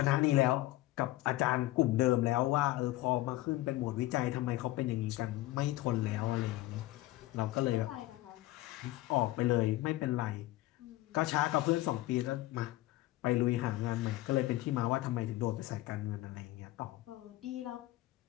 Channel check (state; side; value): quieter; right; 17.3 dB